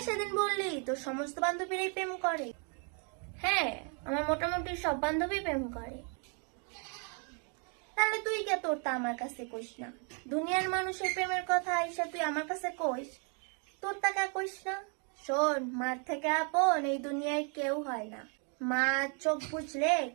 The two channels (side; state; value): left; quieter; 39.2 dB